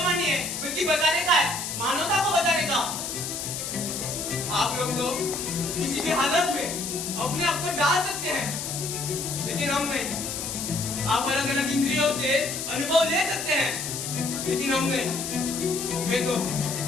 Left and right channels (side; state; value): left; noise; hiss, 5 dB below the sound